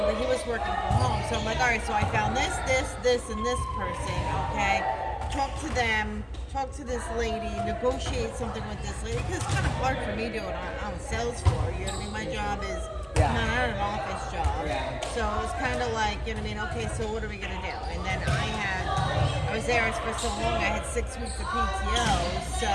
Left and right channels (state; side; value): identical; both; correlation 1.00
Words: but he was working from home. So I'm like, all right, so I found this, and this person. Okay, talk to them, talk to this lady, negotiate something with this lady. Because it's kind of hard for me doing on sales floor. You know what I mean? My job is not an office job. Yeah. So it was kind of like, you know what I mean? Okay, so what are we gonna do? And then I was there for so long. I had 6 weeks of PTO, so